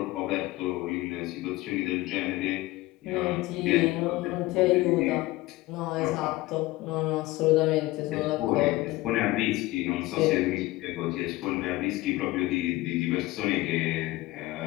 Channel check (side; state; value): right; quieter; 19.1 dB